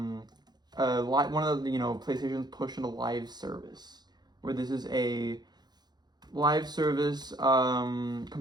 of the, PlayStation's push into live service, where this is a live service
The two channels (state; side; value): late; left; 0.20 ms